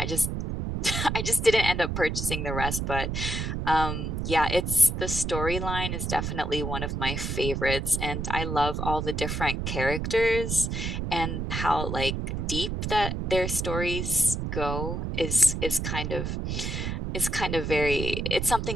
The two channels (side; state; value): right; noise; rumble, 3 dB below the sound